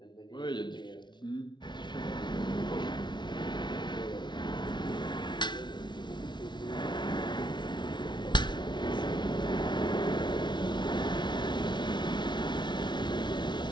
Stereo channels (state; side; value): late; right; 0.22 ms